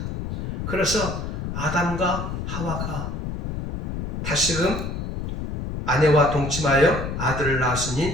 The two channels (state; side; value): noise; left; rumble, 4 dB below the sound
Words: 그래서 아담과 하와가 다시금 아내와 동침하여 아들을